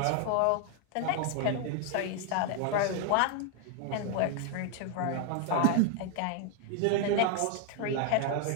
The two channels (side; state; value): both; different; correlation 0.00